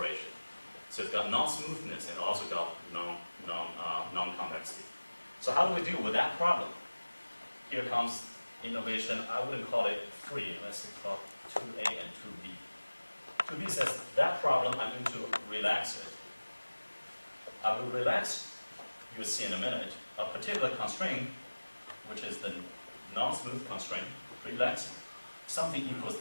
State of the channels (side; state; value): both; inverted; correlation -1.00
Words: So it's got non-smoothness and also got non-convexity. So how do we deal with that problem? Here comes innovation. I wouldn't call it 3. Let's call it 2A and 2B. 2B says that problem I'm going to relax it. I will relax, you'll see in a minute, a particular constraint, which is the non-smooth constraint, relax something equals